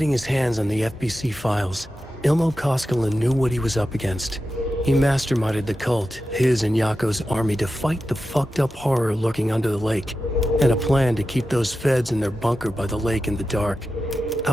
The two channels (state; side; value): normal; both; correlation 0.91